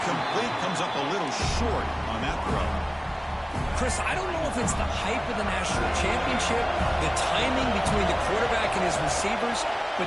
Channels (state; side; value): identical; both; correlation 1.00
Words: comes up a little short on that throw. Chris, I don't know if it's the hype of the national championship, the timing between the quarterback and his receivers,